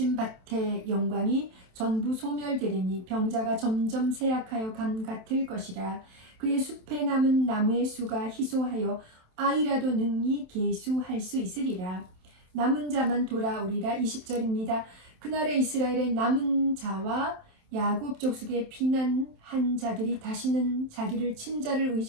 밭의 영광이 전부 소멸되리니 병자가 점점 쇠약하여 감 같을 것이라. 그의 숲에 남은 나무의 수가 희소하여 아이라도 능히 계수할 수 있으리라. 남은 자만 돌아오리라. 20절입니다. 그날에 이스라엘의 남은 자와 야곱 족속의 피난한 자들이 다시는 자기를 친자를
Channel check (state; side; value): late; left; 27 ms